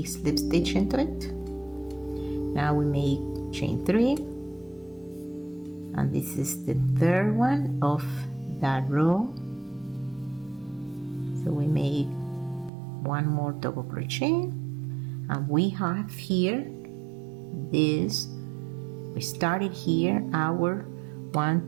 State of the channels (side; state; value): left; drops out; at 12.7 s